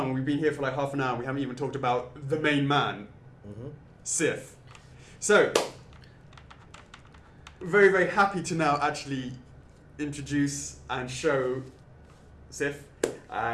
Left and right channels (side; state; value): both; identical; correlation 1.00